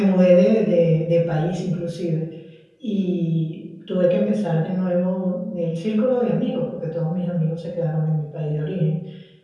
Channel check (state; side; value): identical; both; correlation 1.00